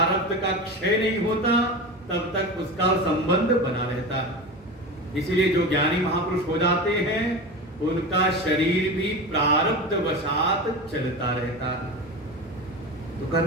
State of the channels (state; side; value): normal; both; correlation 0.27